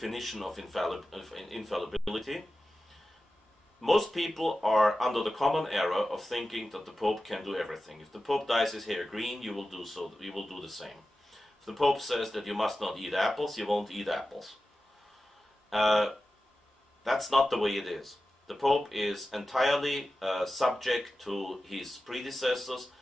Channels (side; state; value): both; normal; correlation 0.94